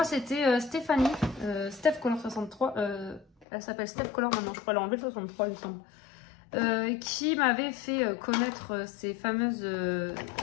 c'était Stéphanie, Steph Color 63, elle s'appelle Steph Color maintenant, je crois, elle a enlevé le 63 il me semble, qui m'avait fait connaître ces fameux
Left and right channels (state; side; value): drops out; right; at 3.5 s